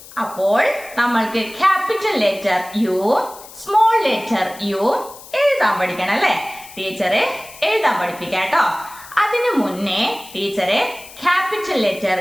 അപ്പോൾ നമ്മൾക്ക് capital letter U, small letter U എഴുതാൻ പഠിക്കണം, അല്ലെ? ടീച്ചറെ എഴുതാൻ പഠിപ്പിക്കാം കേട്ടോ. അതിനു മുന്നേ ടീച്ചറെ capital letter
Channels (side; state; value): left; noise; hiss, 18 dB below the sound